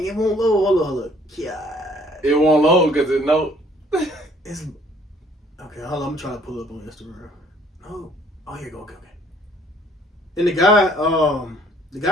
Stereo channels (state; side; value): normal; both; correlation 0.60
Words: it won't load. Hold on. God. It won't load because it no. It's okay. Hold on. I'm trying to pull it up on Instagram. No. Oh, here you go. Okay. And the